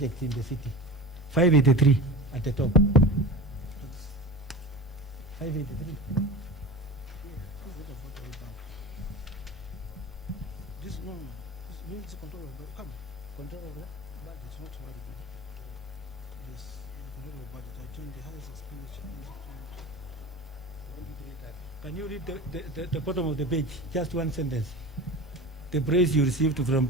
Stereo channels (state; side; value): normal; both; correlation 0.32